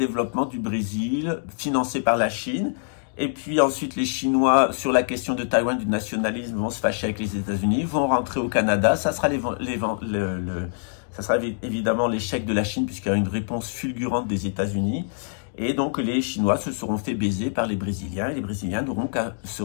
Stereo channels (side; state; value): right; silent; digital silence